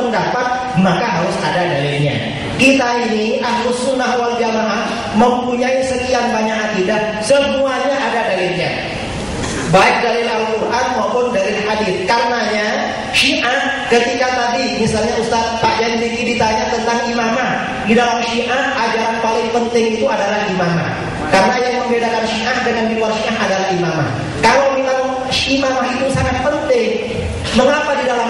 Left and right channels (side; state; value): both; identical; correlation 1.00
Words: maka harus ada dalilnya. Kita ini Ahlus Sunnah wal Jamaah mempunyai sekian banyak akidah, semuanya ada dalilnya. Baik dalil Al-Quran maupun dalil hadis. Karenanya Syiah ketika tadi misalnya Ustaz Pak Yandiki ditanya tentang imamah, di dalam Syiah ajaran paling penting itu adalah imamah. Karena yang membedakan Syiah dengan di luar Syiah adalah imamah. Kalau memang imamah itu sangat penting, mengapa di dalam